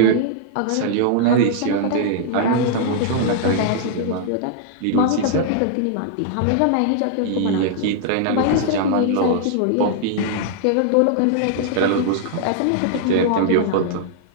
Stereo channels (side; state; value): both; different; correlation -0.01